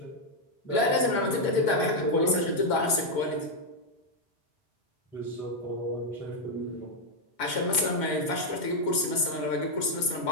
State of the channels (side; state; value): right; late; 5.4 ms